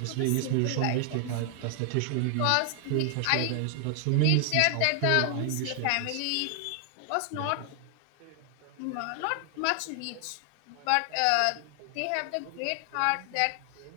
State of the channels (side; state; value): both; different; correlation 0.00